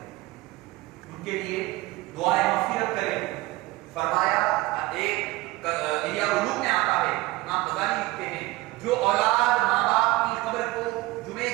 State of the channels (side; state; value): left; quieter; 19.8 dB